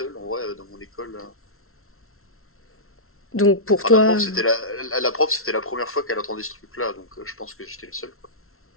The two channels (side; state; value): right; late; 0.62 ms